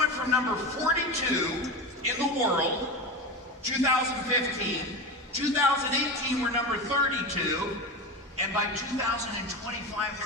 from number 42 in the world, 2015, 2018 we're number 32. And by 2025,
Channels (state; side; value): normal; both; correlation 0.23